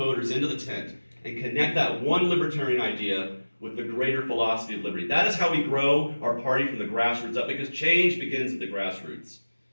into the tent and connect that one libertarian idea with the greater philosophy of liberty. That is how we grow our party from the grassroots up, because change begins at the grassroots.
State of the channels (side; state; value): both; inverted; correlation -1.00